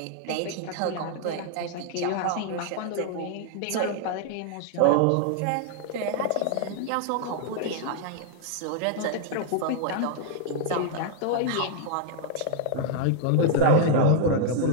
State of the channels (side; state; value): both; different; correlation 0.00